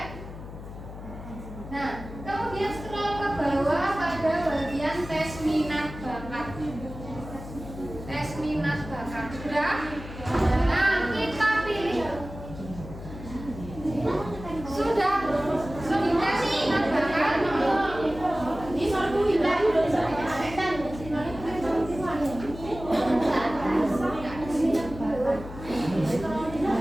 Nah, kemudian scroll ke bawah pada bagian tes minat bakat. Tes minat bakat. Sudah? Nah, kita pilih. Sudah tes minat bakat.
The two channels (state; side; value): noise; left; hum, 12 dB below the sound